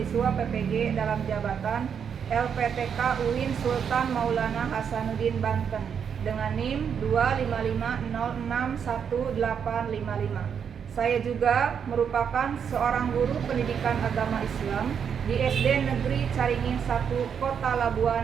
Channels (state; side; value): quieter; left; 7.4 dB